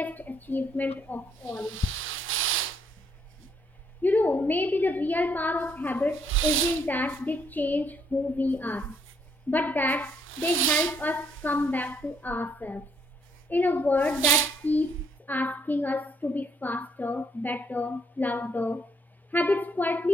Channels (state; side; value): normal; both; correlation 0.69